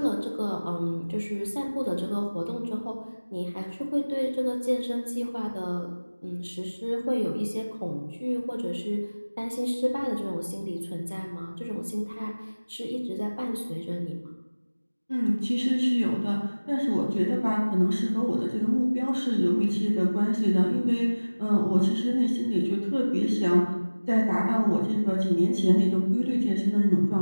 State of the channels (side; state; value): both; inverted; correlation -1.00